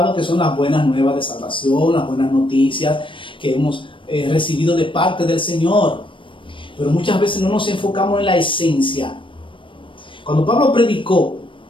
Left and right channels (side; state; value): right; late; 0.25 ms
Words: que son las buenas nuevas de salvación, las buenas noticias que hemos recibido de parte del Señor. Pero muchas veces no nos enfocamos en la esencia. Cuando Pablo predicó